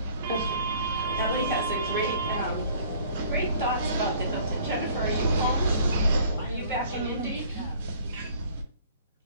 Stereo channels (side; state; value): both; inverted; correlation -0.54